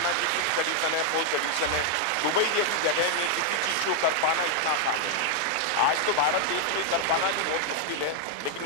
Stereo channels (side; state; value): both; different; correlation 0.00